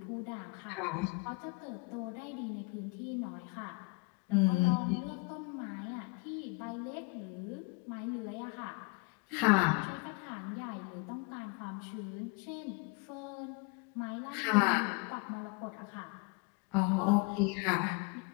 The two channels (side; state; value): right; quieter; 29.3 dB